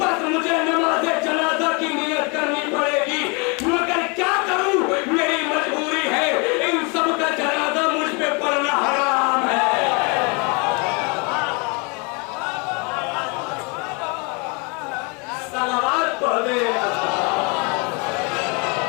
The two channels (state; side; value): quieter; right; 30.7 dB